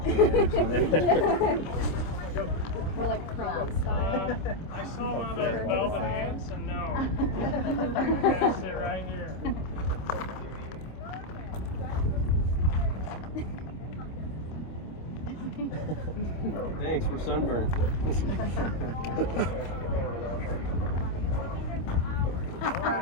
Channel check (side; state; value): right; late; 26 ms